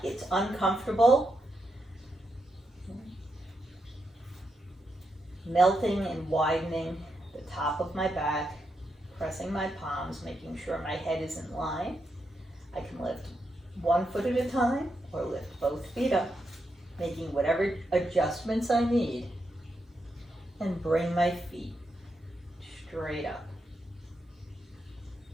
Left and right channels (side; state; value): both; normal; correlation 0.83